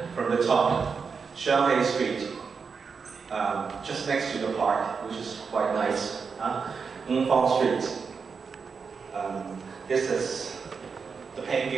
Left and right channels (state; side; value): quieter; left; 5.5 dB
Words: from the top. Shanghai Street, just next to the park, which is quite nice. Ngfong Street. This is the paint